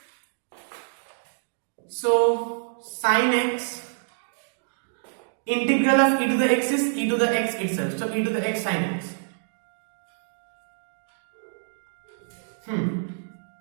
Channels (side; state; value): left; silent; digital silence